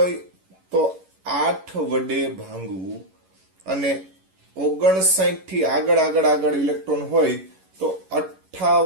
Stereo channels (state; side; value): late; left; 11 ms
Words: તો 8 વડે ભાંગવું અને 59 થી આગળ ઇલેક્ટ્રોન હોય તો